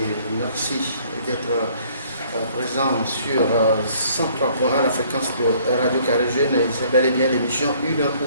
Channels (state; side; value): inverted; both; correlation -0.60